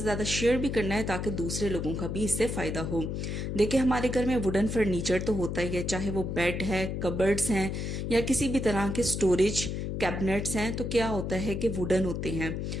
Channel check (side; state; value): left; noise; hum, 3 dB below the sound